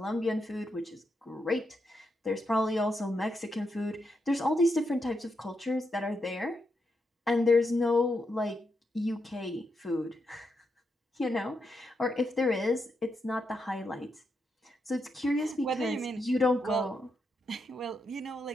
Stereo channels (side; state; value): both; normal; correlation 0.83